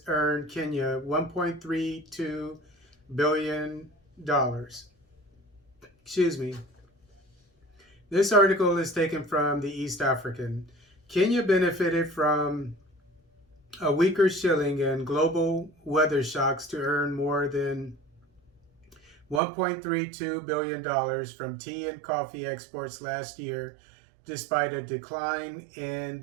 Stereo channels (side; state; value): left; drops out; at 19.4 s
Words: earned Kenya $1.32 billion. Excuse me. This article is taken from the East African. Kenya benefited from a weaker shilling and global weather shocks to earn more than $1.32 billion from tea and coffee exports last year, despite a decline in